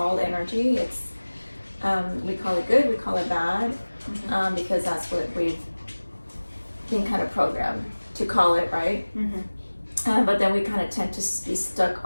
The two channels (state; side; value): inverted; both; correlation -1.00